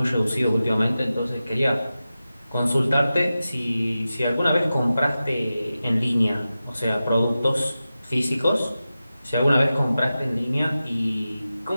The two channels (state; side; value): inverted; both; correlation -0.94